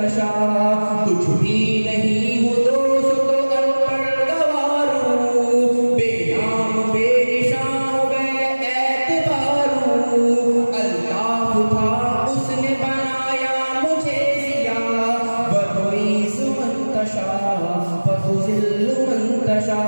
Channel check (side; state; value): both; inverted; correlation -1.00